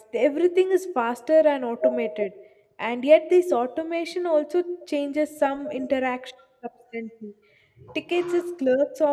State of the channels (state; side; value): identical; both; correlation 1.00